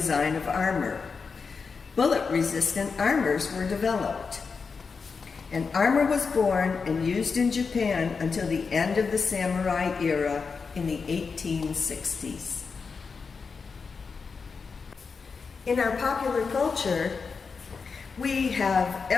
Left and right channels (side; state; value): right; quieter; 5.1 dB